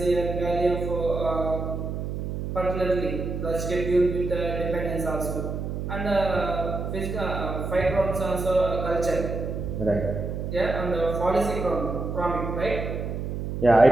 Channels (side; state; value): right; noise; hum, 4 dB below the sound